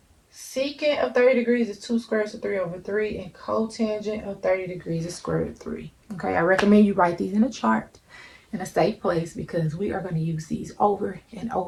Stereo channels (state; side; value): identical; both; correlation 1.00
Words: Secant of 30 degrees is 2 square roots of 3 over 3. And cotangent of 30 degrees is square root of 3. Okay, I recommend you write these in a chart in a safe place because we are going to use these over and